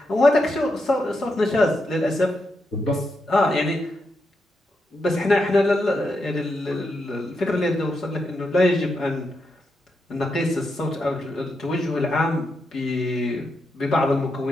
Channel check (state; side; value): normal; both; correlation 0.84